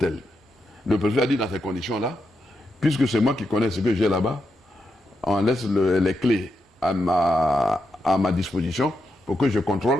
Le préfet a dit dans ces conditions-là, puisque c'est moi qui connais ce que j'ai là-bas, on laisse les clés à ma disposition pour que je contrôle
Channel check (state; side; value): normal; both; correlation 0.84